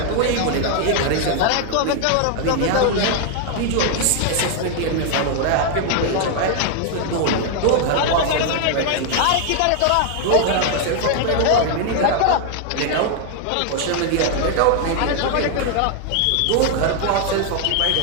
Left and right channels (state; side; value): different; both; correlation 0.00